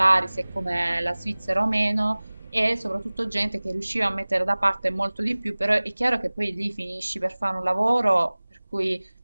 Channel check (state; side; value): inverted; both; correlation -1.00